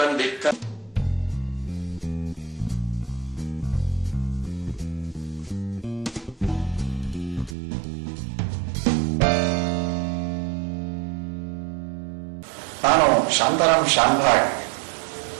ನಾನು ಶಾಂತಾರಾಮ್ ಶಾಂಭಾಗ್.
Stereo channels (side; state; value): left; drops out; at 7.6 s